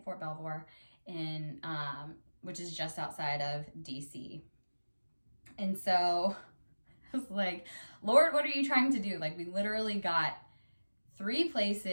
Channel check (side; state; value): both; inverted; correlation -1.00